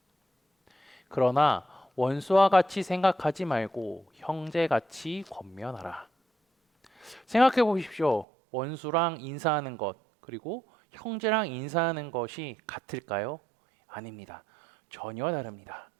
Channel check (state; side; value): drops out; left; at 8.2 s